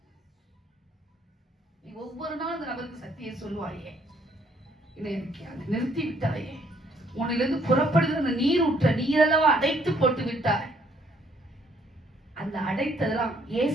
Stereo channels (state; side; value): normal; both; correlation 0.66